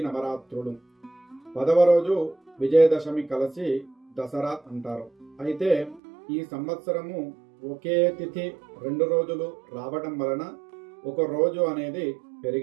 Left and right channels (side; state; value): left; drops out; at 6.0 s